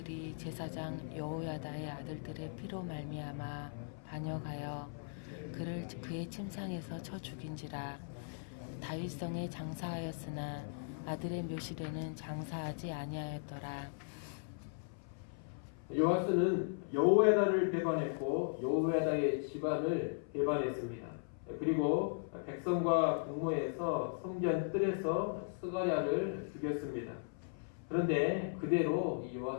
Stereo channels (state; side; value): silent; right; 53 dB below the other